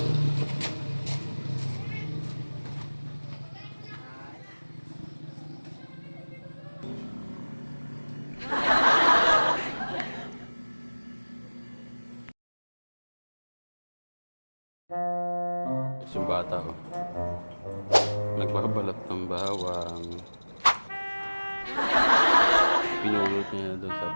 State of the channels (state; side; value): inverted; both; correlation -1.00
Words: Yung bata oh. Nagbabalat ng bawang. Pinulot niya doon sa